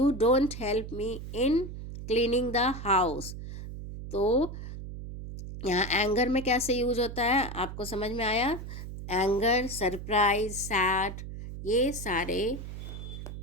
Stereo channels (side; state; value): right; noise; hum, 9 dB below the sound